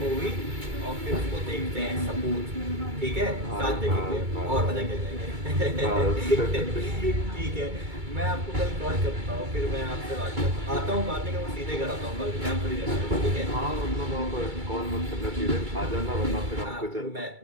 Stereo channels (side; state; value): left; late; 2.3 ms